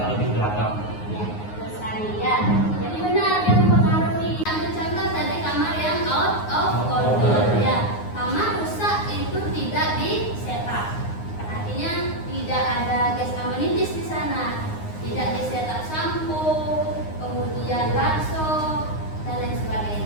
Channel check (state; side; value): late; right; 9.6 ms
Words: lebih beragam. Ya, betul sekali ya. Jadi benar yang mempengaruhi. Ambil contoh tadi kamar yang out of order ya. Kamar rusak itu tidak di setup. Artinya tidak ada gas amenities di sana. Tidak di setup sampo, kemudian bakso dan lain